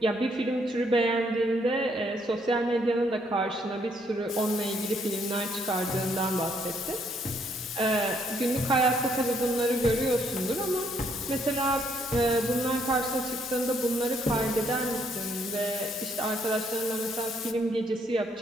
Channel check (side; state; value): both; normal; correlation 0.69